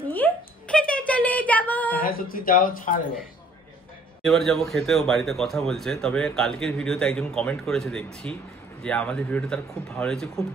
নিয়ে খেতে চলে যাবো। হ্যাঁ সত্যি, যাও ছাড়। এবার যাবো খেতে। ও বাড়িতে কথা বলছে। তবে কালকের ভিডিওতে একজন কমেন্ট করেছে দেখছি যে আমাদের ভিডিওটা তার খুব ভালো লেগেছে, খুব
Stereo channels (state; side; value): normal; both; correlation 0.59